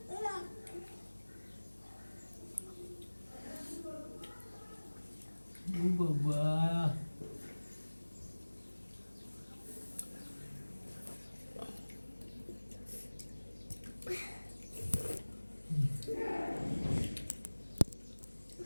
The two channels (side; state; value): both; inverted; correlation -1.00